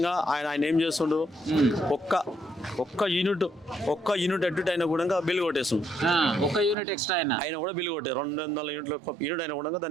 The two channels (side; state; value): left; drops out; at 6.8 s